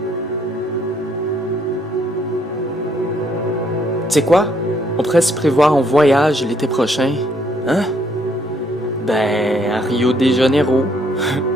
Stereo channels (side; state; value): both; normal; correlation 0.69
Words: Tu sais quoi? On pourrait se prévoir en voyage l'été prochain. Hein? Ben, à Rio de Janeiro.